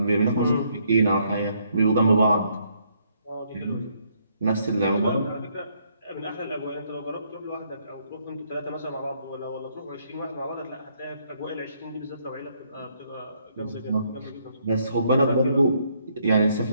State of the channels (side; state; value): both; inverted; correlation -0.71